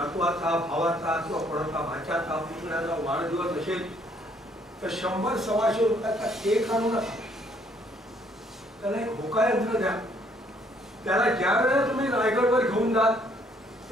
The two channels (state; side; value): normal; both; correlation 0.66